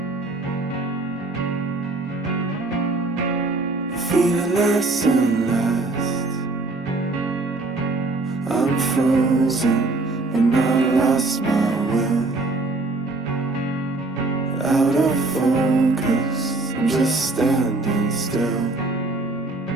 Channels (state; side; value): quieter; left; 3.2 dB